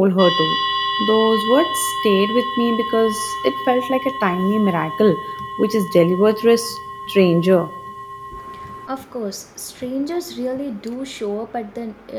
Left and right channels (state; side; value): identical; both; correlation 1.00